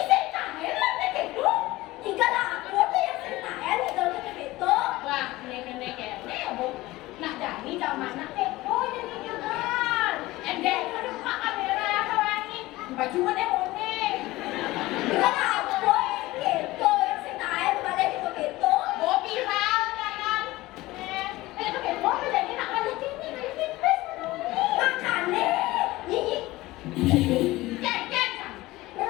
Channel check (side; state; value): right; quieter; 18.8 dB